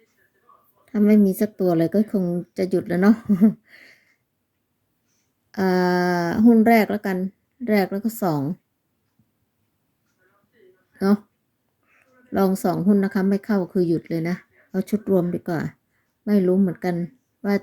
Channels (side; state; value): both; identical; correlation 1.00